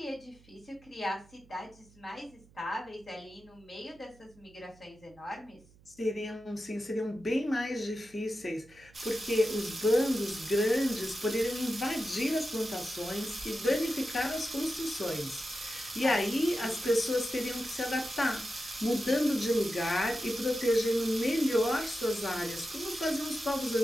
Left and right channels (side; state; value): right; noise; hum, 27 dB below the sound